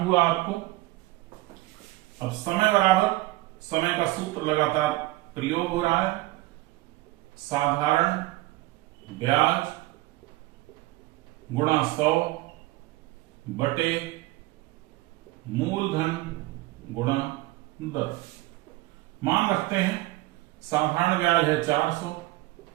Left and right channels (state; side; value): quieter; left; 19.2 dB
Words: हुआ आपको। अब समय बराबर, समय का सूत्र लगातार प्रयोग हो रहा है, साधारण ब्याज गुणा 100 बटे मूलधन गुणा दर। मान रखते हैं साधारण ब्याज है 400